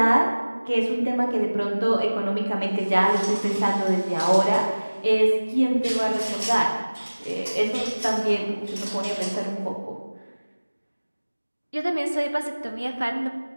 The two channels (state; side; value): inverted; both; correlation -1.00